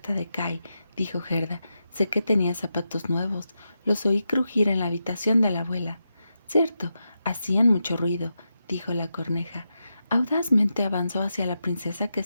de Kai», dijo Gerda. «Sé que tenía zapatos nuevos. Los oí crujir en la habitación de la abuela». «Cierto, hacían mucho ruido», dijo la corneja. Audazmente avanzó hacia la princesa, que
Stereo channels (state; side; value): inverted; both; correlation -0.87